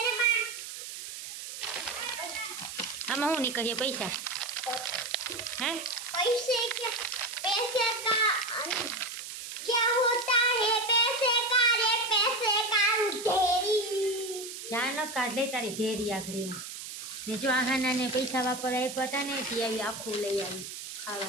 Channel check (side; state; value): right; noise; hiss, 9 dB below the sound